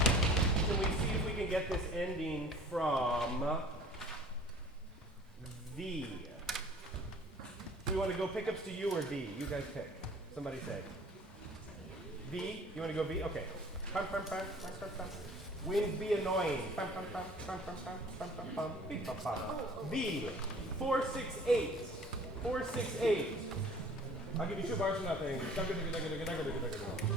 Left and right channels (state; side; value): normal; both; correlation 0.49